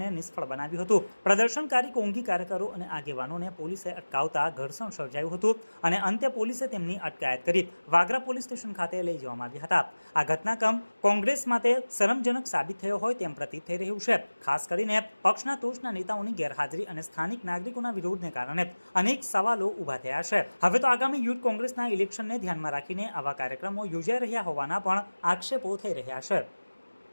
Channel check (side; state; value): both; inverted; correlation -1.00